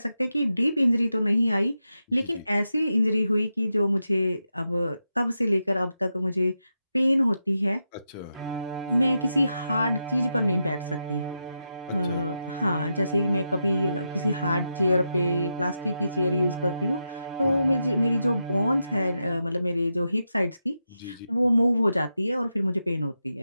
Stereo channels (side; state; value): both; inverted; correlation -0.87